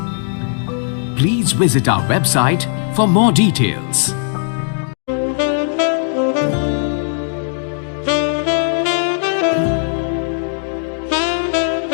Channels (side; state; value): right; silent; digital silence